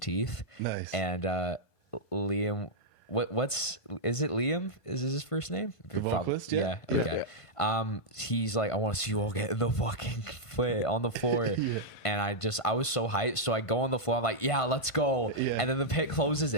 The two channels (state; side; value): late; right; 1.5 ms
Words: Nice. And Liam, is it Liam? Is his first name? The vocalist? Yeah. Yeah. Okay. He's like, I want to see you all get in the fucking foot on the floor. Yeah. And I was so hyped. So I go on the floor. I'm like, yeah, let's go. Yeah. And then the pit closes